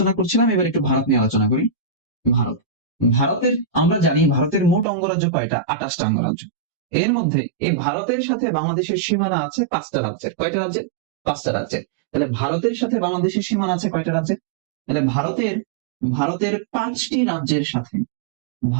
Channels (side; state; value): left; drops out; at 4.9 s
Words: করছিলাম, এবার একটু ভারত নিয়ে আলোচনা করি। ভারত, ভারতের আমরা জানি ভারতের মোট অঙ্গরাজ্য কয়টা? 28টা অঙ্গরাজ্য। এর মধ্যে এই ভারতের সাথে বাংলাদেশের সীমানা আছে 5টা রাজ্যের। কয়টা রাজ্যের? 5টা রাজ্যের। তাহলে ভারতের সাথে বাংলাদেশের সীমানা আছে কয়টা রাজ্যের? তাহলে ভারতের ভারতের 5টি রাজ্যের সাথে,